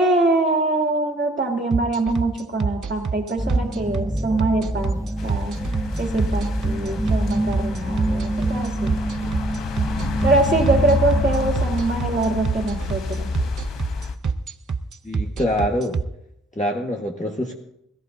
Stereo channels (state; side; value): normal; both; correlation 0.62